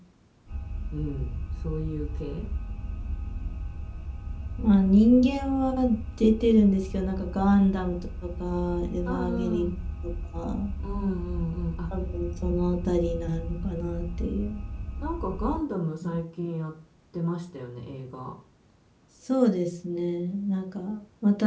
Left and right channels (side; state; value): both; identical; correlation 1.00